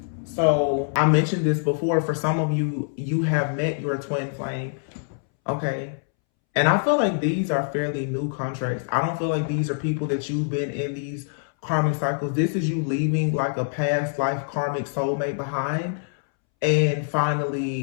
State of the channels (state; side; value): silent; right; 62 dB below the other